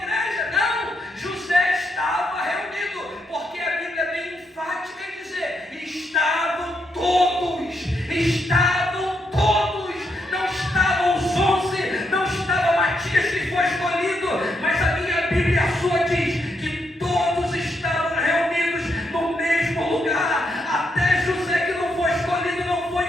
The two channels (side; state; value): both; normal; correlation 0.80